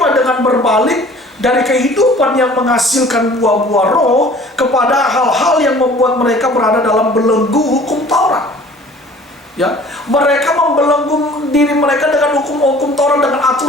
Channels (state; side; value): normal; both; correlation 0.49